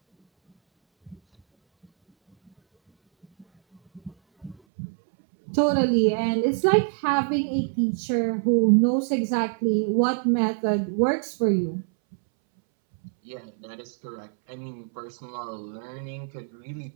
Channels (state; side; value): drops out; left; at 4.5 s